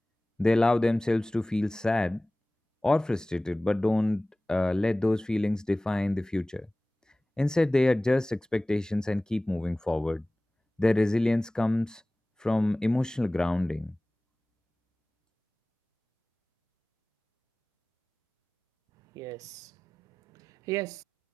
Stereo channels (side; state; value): both; normal; correlation 0.98